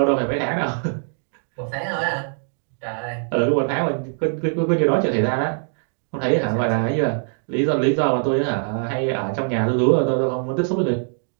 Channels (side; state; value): left; silent; 64 dB below the other